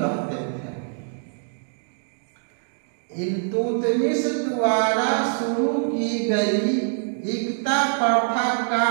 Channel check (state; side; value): silent; left; digital silence